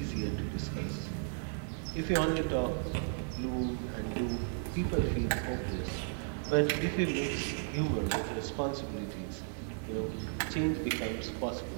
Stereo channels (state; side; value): silent; left; 55 dB below the other